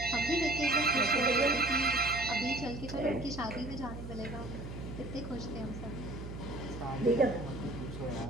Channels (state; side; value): noise; right; hum, 9 dB below the sound